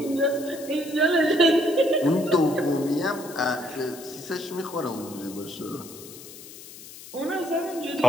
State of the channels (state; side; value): noise; left; hiss, 16 dB below the sound